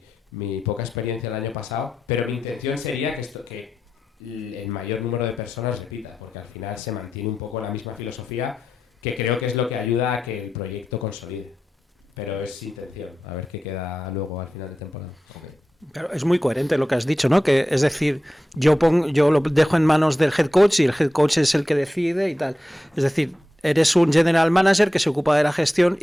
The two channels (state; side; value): normal; both; correlation 0.90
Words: poca experiencia el año pasado, pero mi intención sería que el mayor número de personas repita, porque al final se mantiene un poco la misma filosofía, que creo que es lo que ayuda a que el proyecto consolide. Pero es intención, a ver qué queda luego al final de temporada. Okay. Pero es muy coherente lo que has dicho, ¿no? Que es decir, yo lo dejo en manos del head coach y el head coach es el que decide y tal. Es decir, eres un general manager que se ocupa de la gestión